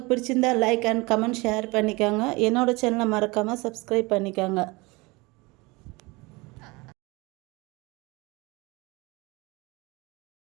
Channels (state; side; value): quieter; left; 24.5 dB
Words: பிடிச்சிருந்தால் லைக் அண்ட் கமெண்ட் ஷேர் பண்ணிக்கோங்க. என்னோடய சேனலை மறக்காமல் சப்ஸ்கிரைப் பண்ணிக்கோங்க.